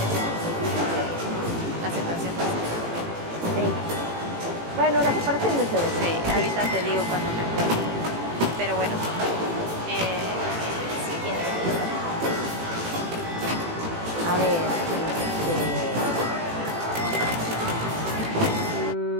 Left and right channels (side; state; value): left; late; 18 ms